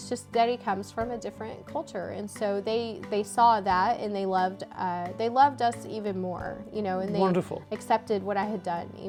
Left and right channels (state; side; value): identical; both; correlation 1.00